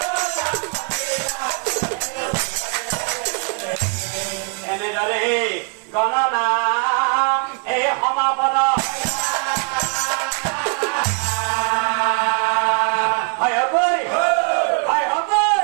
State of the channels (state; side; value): quieter; left; 39.2 dB